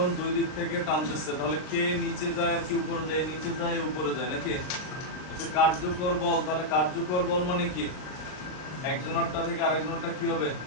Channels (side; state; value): right; late; 39 ms